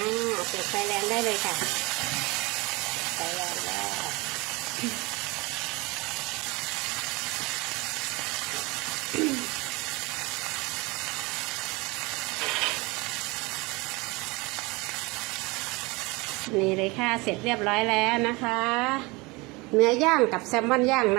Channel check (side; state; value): left; quieter; 24.9 dB